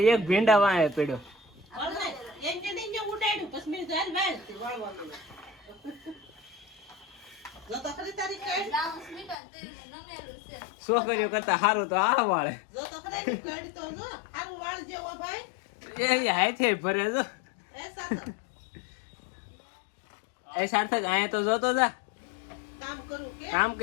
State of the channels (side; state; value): right; drops out; at 9.3 s